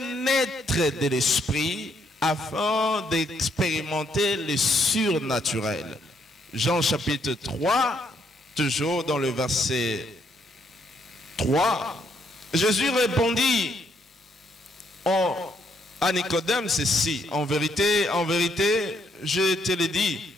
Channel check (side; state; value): both; normal; correlation 0.73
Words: naître de l'esprit afin d'expérimenter le surnaturel. Jean chapitre 3, toujours dans le verset 3, Jésus répondit à Nicodème ceci: en vérité, je te le dis,